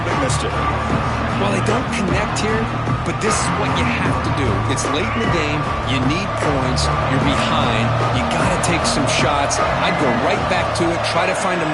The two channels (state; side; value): identical; both; correlation 1.00